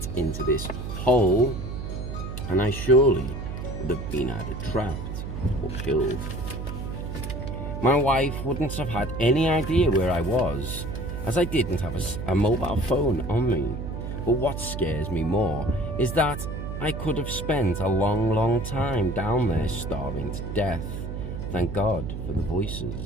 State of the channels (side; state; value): right; noise; hum, 6 dB below the sound